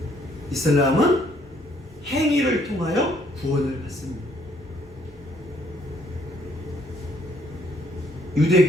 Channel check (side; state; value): both; normal; correlation 0.66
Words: 이슬람은 행위를 통하여 구원을 받습니다.